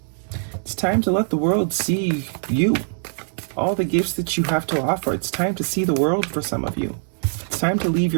It's time to let the world see you. All the gifts that you have to offer. It's time to see the world for some of you. It's time to leave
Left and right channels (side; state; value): left; silent; digital silence